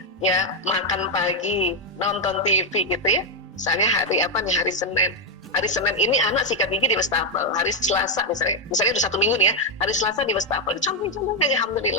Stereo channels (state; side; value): normal; both; correlation 0.02